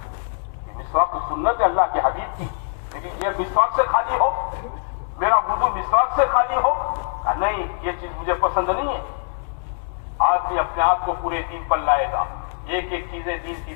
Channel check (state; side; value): silent; right; digital silence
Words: مسواک تو سنت ہے اللہ کے حبیب کی، لیکن یہ مسواک سے خالی ہو، میرا وضو مسواک سے خالی ہو، نہیں یہ چیز مجھے پسند نہیں ہے۔ آدمی اپنے آپ کو پورے دین پر لائے گا، ایک ایک چیزیں دین کی